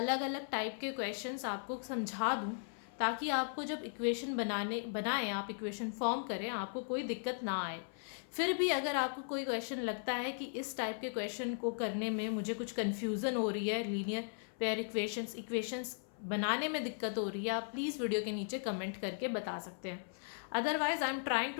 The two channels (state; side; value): silent; right; 53 dB below the other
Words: अलग अलग टाइप के क्वेश्चंस आपको समझा दूँ, ताकि आपको जब इक्वेशन बनाएं आप इक्वेशन फॉर्म करें, आपको कोई दिक्कत ना आए। फिर भी अगर आपको कोई क्वेश्चन लगता है कि इस टाइप के क्वेश्चन को करने में मुझे कुछ कन्फ्यूज़न हो रही है, लीनियर पेयर इक्वेशंस बनाने में दिक्कत हो रही है, आप प्लीज़ वीडियो के नीचे कमेंट करके बता सकते हैं। Otherwise, I'm trying